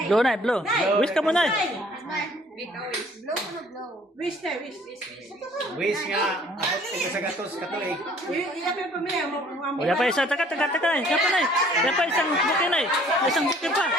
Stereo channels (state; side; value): normal; both; correlation 0.57